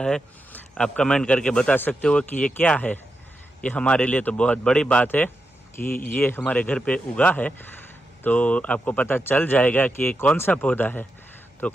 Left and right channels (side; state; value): both; normal; correlation 0.87